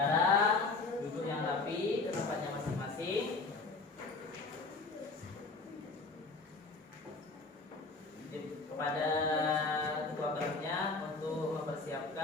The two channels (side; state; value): right; quieter; 3.8 dB